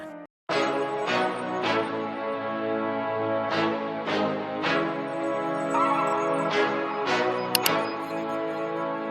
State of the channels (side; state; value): both; identical; correlation 1.00